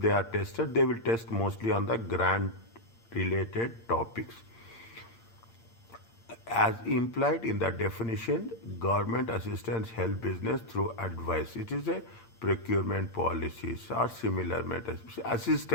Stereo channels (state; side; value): late; right; 8.7 ms